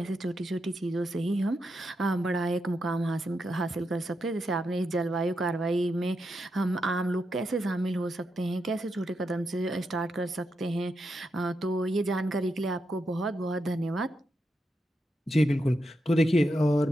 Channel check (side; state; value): both; normal; correlation 0.84